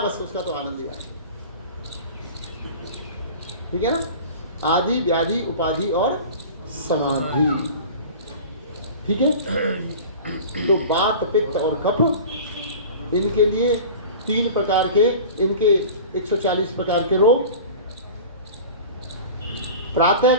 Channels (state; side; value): inverted; both; correlation -0.37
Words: बस उसका तो आनंद ही आया। ठीक है ना। आदि, व्याधि, उपाधि और समाधि। ठीक है। तो वात, पित्त और कफ, इनके लिए 3 प्रकार के, इनके 140 प्रकार के रोग। प्रातः